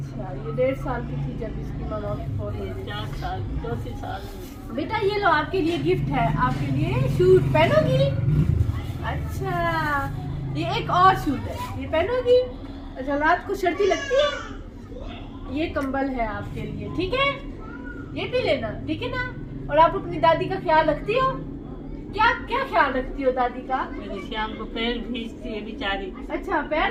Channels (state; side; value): identical; both; correlation 1.00